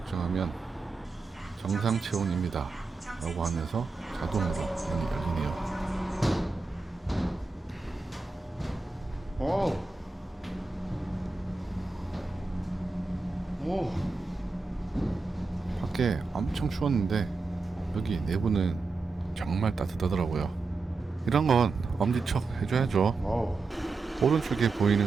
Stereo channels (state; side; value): quieter; left; 3.9 dB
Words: 정상 체온입니다 라고 하면서 자동으로 문이 열리네요. 밖에 엄청 추웠는데 여기 내부는 정말 따뜻하더라고요. 이런 건 엄지척 해줘야죠. 오른쪽에